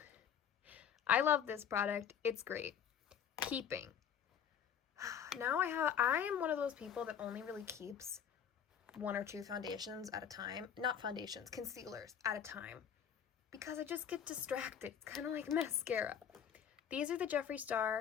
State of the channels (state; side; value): quieter; right; 8.3 dB